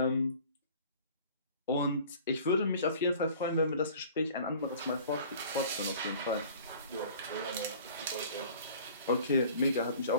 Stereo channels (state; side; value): inverted; both; correlation -0.48